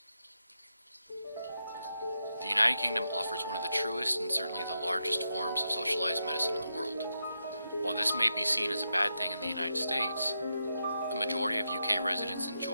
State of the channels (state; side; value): inverted; both; correlation -0.85